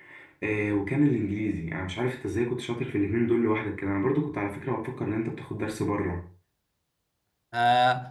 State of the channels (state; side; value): identical; both; correlation 1.00